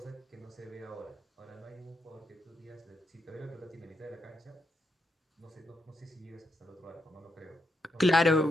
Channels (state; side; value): normal; both; correlation 0.82